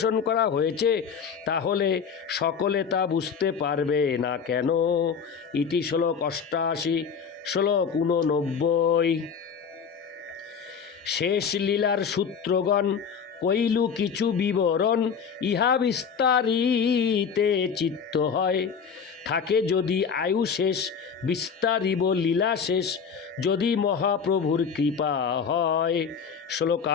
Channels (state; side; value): quieter; right; 6.4 dB